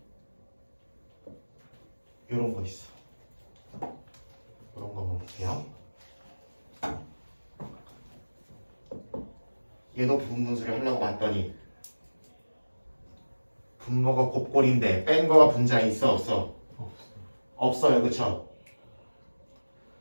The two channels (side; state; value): both; inverted; correlation -1.00